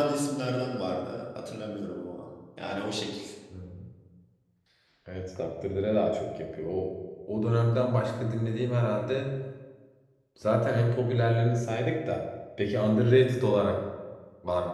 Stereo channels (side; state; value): both; identical; correlation 1.00